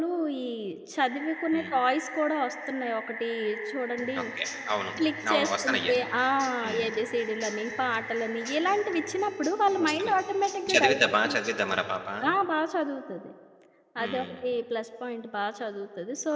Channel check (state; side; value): identical; both; correlation 1.00